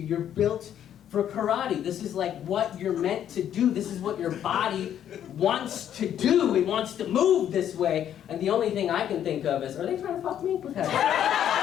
You're built for karate. This is like what you're meant to do. This is what your body wants to do. It wants to move this way. And the only thing I can think of is, are they trying to fuck me? What the heck?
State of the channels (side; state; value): right; quieter; 10.1 dB